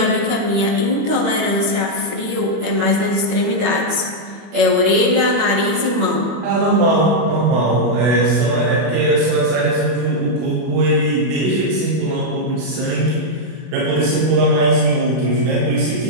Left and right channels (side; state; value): left; late; 24 ms